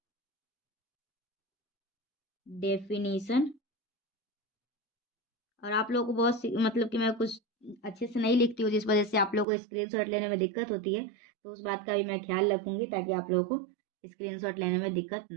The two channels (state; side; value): drops out; left; at 9.5 s